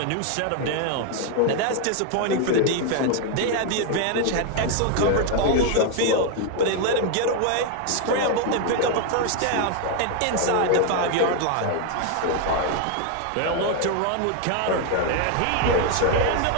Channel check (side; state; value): both; different; correlation 0.01